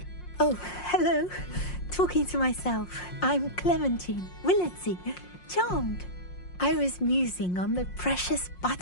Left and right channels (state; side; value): late; right; 5.6 ms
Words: Oh, hello. Talking to myself. I'm Clementine Willardsey, charmed. I was musing on the precious